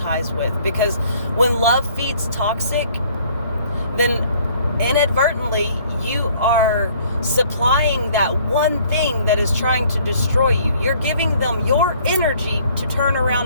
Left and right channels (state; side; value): inverted; both; correlation -0.59